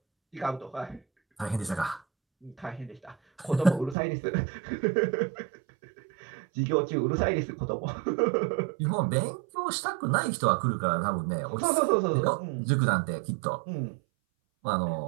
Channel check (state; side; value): drops out; left; at 4.0 s